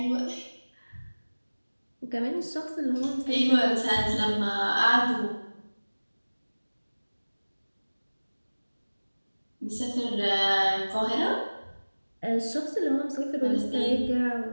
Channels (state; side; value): inverted; both; correlation -1.00